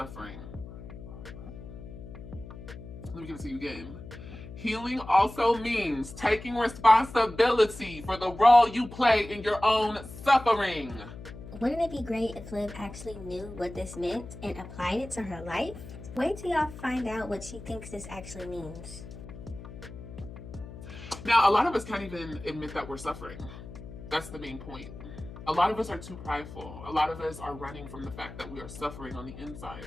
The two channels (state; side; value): noise; left; hum, 13 dB below the sound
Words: Let me give it to you again. Healing also means taking responsibility for the role you play in your own suffering. Wouldn't it be great if Liv actually knew what this meant and applied it to her life? Wait till y'all find out what she thinks this actually means. Now, a lot of us can't even admit that we're suffering. That's the main point. A lot of us are too prideful. A lot of us are running from the fact that we are suffering on the inside.